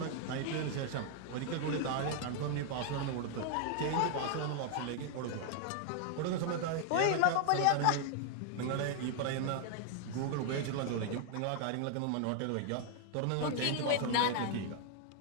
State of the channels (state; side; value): different; both; correlation 0.00